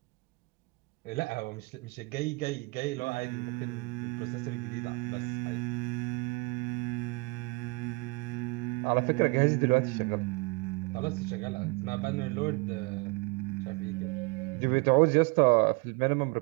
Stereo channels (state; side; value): quieter; left; 27.3 dB